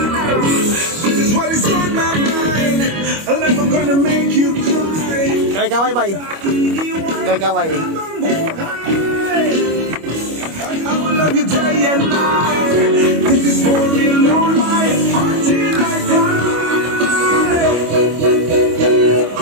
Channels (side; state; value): left; late; 25 ms